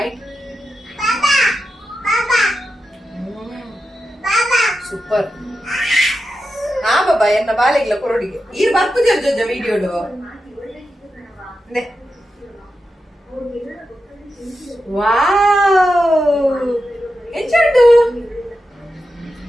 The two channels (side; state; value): both; normal; correlation 0.89